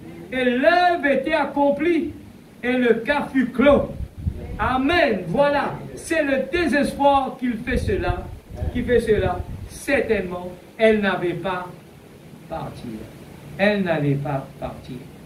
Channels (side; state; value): both; identical; correlation 1.00